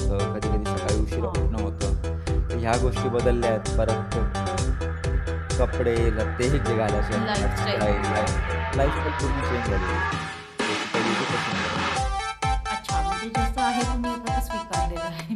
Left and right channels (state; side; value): identical; both; correlation 1.00